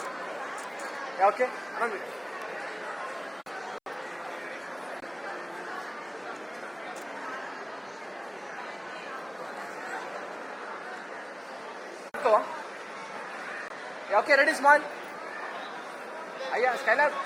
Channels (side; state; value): both; identical; correlation 1.00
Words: ఓకే అన్న మీరు ఓకే రెడీ స్మైల్. అయ్యా స్కైలర్